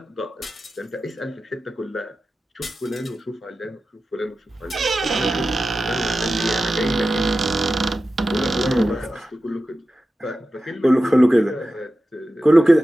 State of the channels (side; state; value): both; normal; correlation 0.93